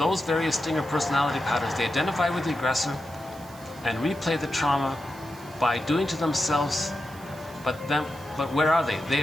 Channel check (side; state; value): right; noise; hiss, 22 dB below the sound